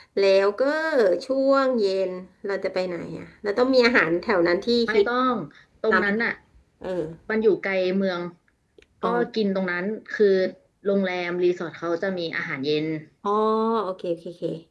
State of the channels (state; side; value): identical; both; correlation 1.00